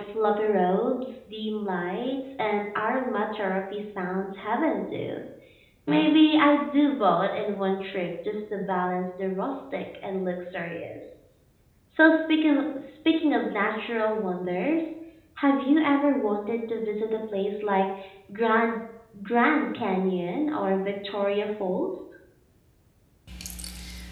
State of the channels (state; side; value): identical; both; correlation 1.00